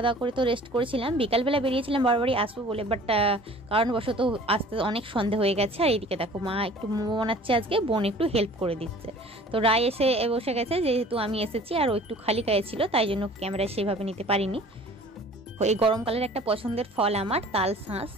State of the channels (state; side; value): normal; both; correlation 0.48